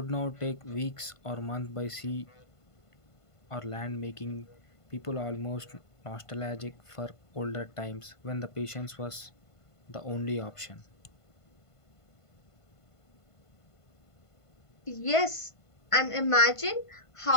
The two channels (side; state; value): right; late; 1.5 ms